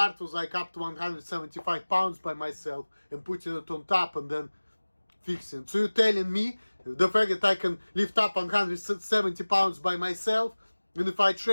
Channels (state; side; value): inverted; both; correlation -1.00